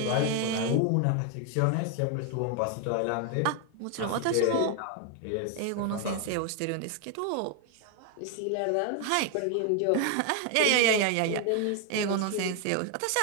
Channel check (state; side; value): different; both; correlation 0.01